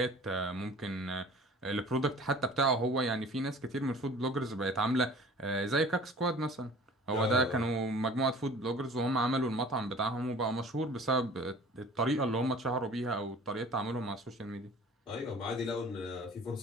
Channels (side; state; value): both; normal; correlation 0.46